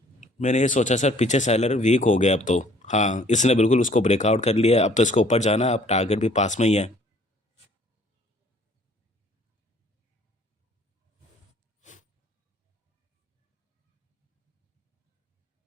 मैंने ये सोचा सर, पीछे सेलर वीक हो गया अब तो। हाँ, इसने बिल्कुल उसको ब्रेकआउट कर लिया, अब तो इसको ऊपर जाना है, अब टारगेट भी पास में ही है।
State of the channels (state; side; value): normal; both; correlation 0.57